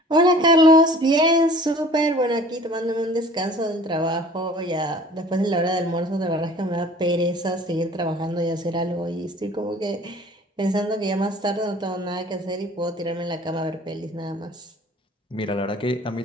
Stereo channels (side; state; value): both; normal; correlation 0.48